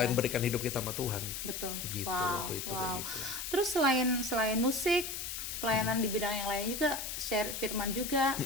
berikan hidup kita sama Tuhan. Betul. Gitu waktu itu kayak gitu. Terus selain musik, pelayanan di bidang yang lain juga, share firman juga.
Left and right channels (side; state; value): left; noise; hiss, 5 dB below the sound